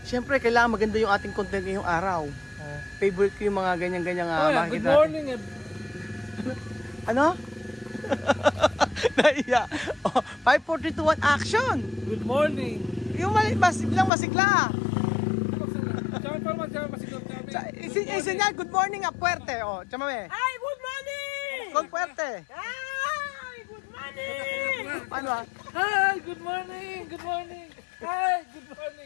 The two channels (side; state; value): right; drops out; at 14.1 s